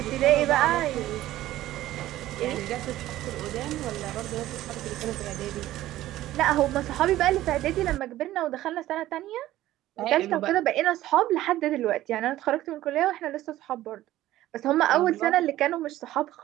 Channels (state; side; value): quieter; left; 14.8 dB